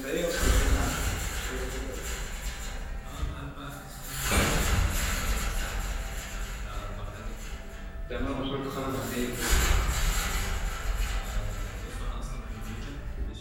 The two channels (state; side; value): identical; both; correlation 1.00